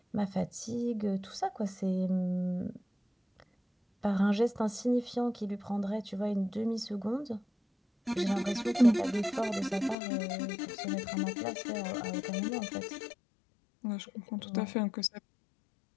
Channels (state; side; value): drops out; right; at 10.0 s